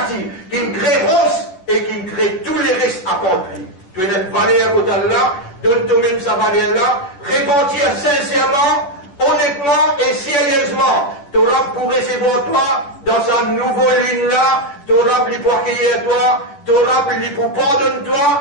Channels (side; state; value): right; late; 11 ms